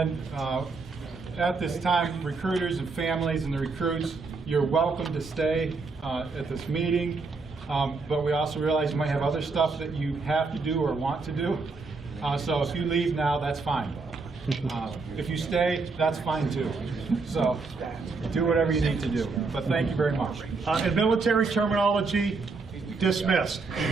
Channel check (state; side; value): quieter; left; 4.2 dB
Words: at this time, recruiters and families and the recruits, you're welcome to stay at this meeting, but we also realize you might have other stuff that you have to do or want to do. So if you leave now, that's fine. If you stay, that's fine too. So do whatever you need to do. But thank you very much. In military terminology, dismissed.